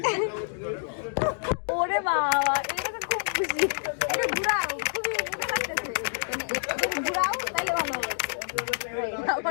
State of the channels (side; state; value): right; silent; digital silence